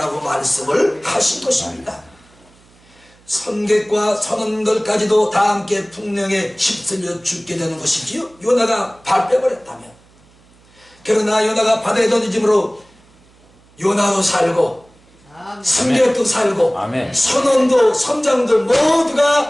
말씀을 하신 것입니다. 선객과 선원들까지도 다 함께 풍령에 휩쓸려 죽게 되는 것이지요. 요나가 발 빼버렸다면. 그러나 요나가 바다에 던짐으로 요나도 살고 승객도 살고 선원도 선장도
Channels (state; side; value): noise; right; hum, 30 dB below the sound